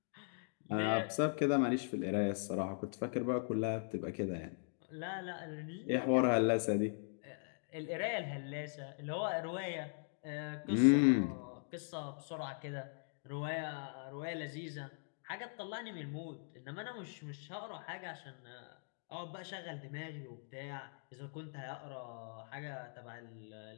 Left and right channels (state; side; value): silent; right; digital silence